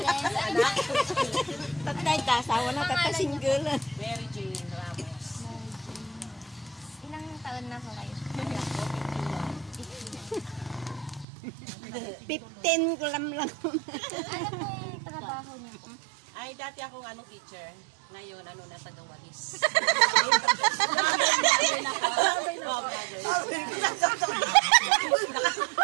Anak? Tatay ka, asawa na, tatay single. Mary Jane Ramos. Ilang taon na po kayo? 15 ko lang. Ano pong trabaho niyo po? Ay, dati akong teacher. Ngayon, na tagawalis.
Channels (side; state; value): left; drops out; at 11.2 s